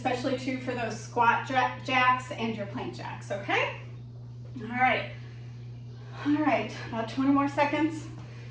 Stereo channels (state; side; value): identical; both; correlation 1.00